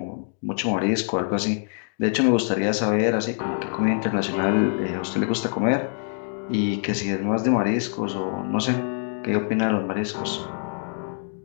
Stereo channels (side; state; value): right; silent; 62 dB below the other